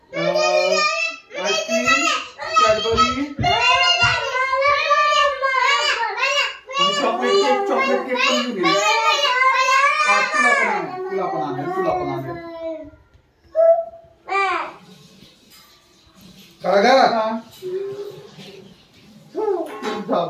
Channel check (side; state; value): both; identical; correlation 1.00